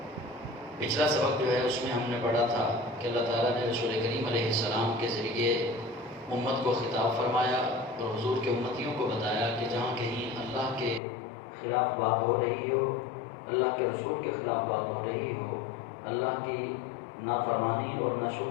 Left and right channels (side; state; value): right; drops out; at 11.0 s